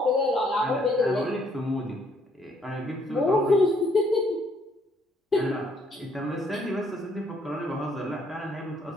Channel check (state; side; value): normal; both; correlation 0.67